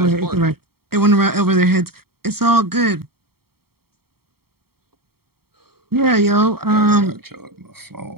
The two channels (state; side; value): late; left; 0.95 ms